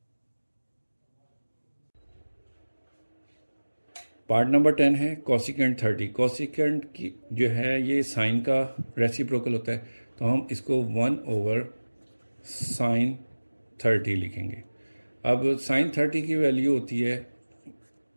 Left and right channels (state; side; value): inverted; both; correlation -1.00